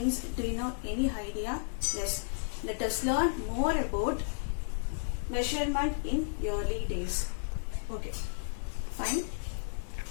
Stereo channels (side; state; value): right; silent; digital silence